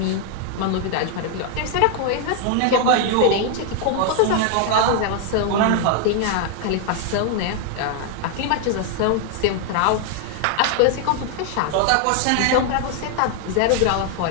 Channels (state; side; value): different; both; correlation 0.00